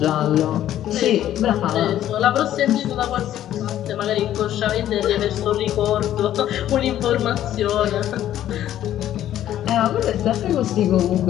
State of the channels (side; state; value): right; quieter; 12.0 dB